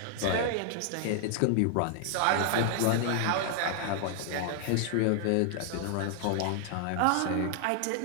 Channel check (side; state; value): both; different; correlation 0.00